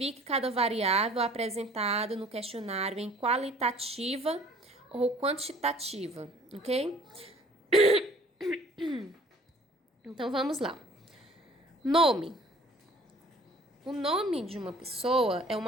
cada variável apresentada no questionário em qualitativa ou quantitativa, ok? Então, vamos lá. Nome. O nome de uma pessoa é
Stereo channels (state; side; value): normal; both; correlation 0.53